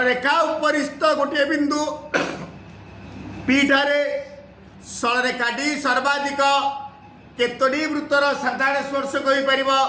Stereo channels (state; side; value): identical; both; correlation 1.00